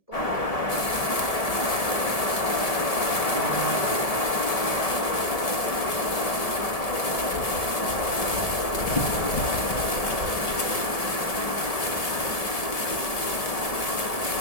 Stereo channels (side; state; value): right; late; 1.7 ms